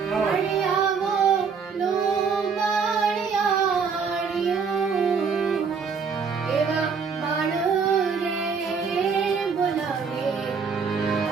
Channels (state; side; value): quieter; left; 5.7 dB